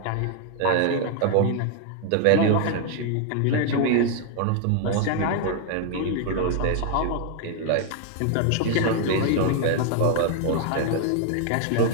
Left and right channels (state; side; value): different; both; correlation 0.00